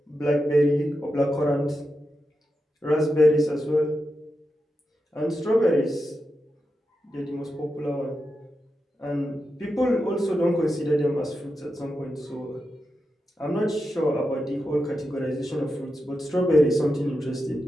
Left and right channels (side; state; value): both; normal; correlation 0.89